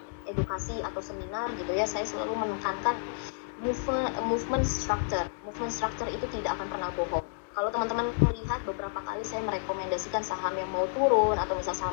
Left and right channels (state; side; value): silent; right; digital silence